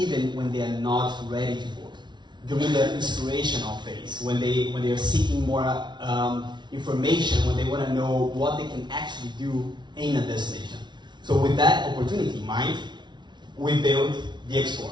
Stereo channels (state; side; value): late; left; 0.21 ms